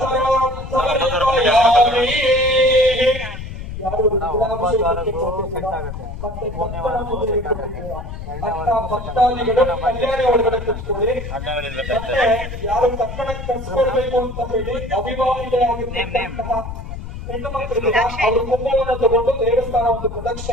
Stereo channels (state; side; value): noise; left; rumble, 9 dB below the sound